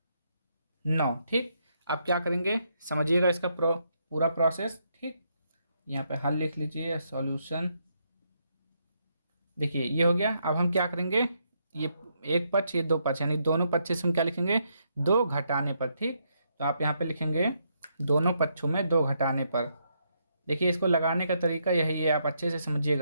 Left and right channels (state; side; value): inverted; both; correlation -0.77